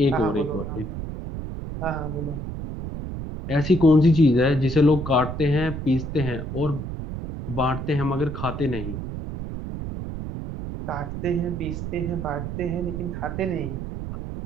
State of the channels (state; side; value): noise; right; rumble, 6 dB below the sound